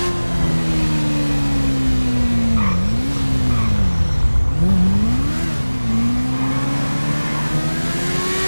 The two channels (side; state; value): both; inverted; correlation -1.00